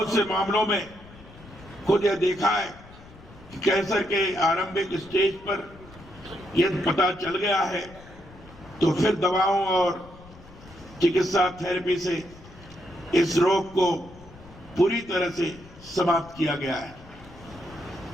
से मामलों में खुद यह देखा है कि कैंसर के आरंभिक स्टेज पर यदि पता चल गया है तो फिर दवाओं और चिकित्सा थेरेपी से इस रोग को पूरी तरह से समाप्त किया गया है।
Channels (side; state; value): left; noise; rumble, 21 dB below the sound